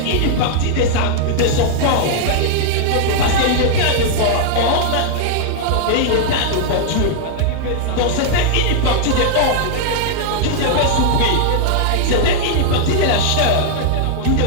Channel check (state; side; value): different; both; correlation -0.01